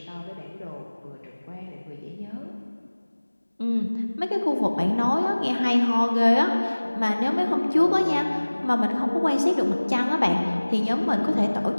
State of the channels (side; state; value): both; inverted; correlation -1.00